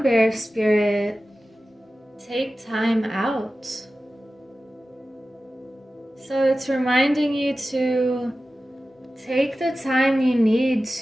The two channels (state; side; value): normal; both; correlation 0.95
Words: bear spirit. Take time out. So it's reminding you to take the time you need